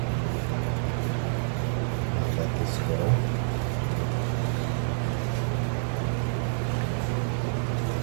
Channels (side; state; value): left; silent; digital silence